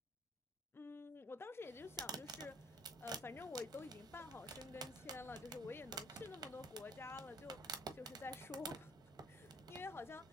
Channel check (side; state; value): both; normal; correlation 0.58